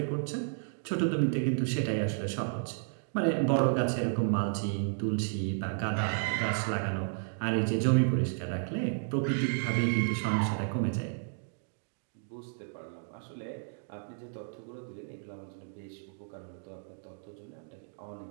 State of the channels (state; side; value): silent; left; digital silence